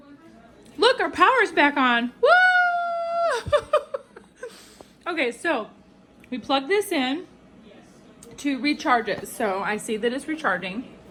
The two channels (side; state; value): both; identical; correlation 1.00